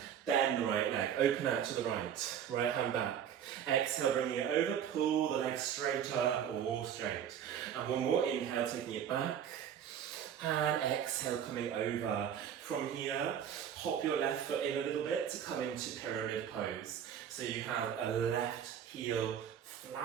Bend the right leg, open out to the right, right hand back. Exhale, bringing it over, pull the leg straighter or straight. And one more, inhale, taking it back. And exhale, coming over. From here, hop your left foot in a little bit to come into pyramid pose. So you have a left heel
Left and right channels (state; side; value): quieter; left; 9.0 dB